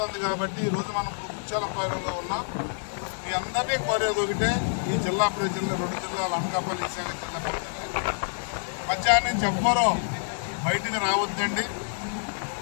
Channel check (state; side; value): silent; right; digital silence